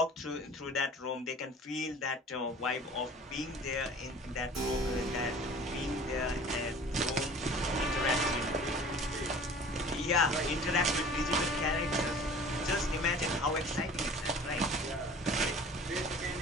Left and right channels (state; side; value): normal; both; correlation 0.44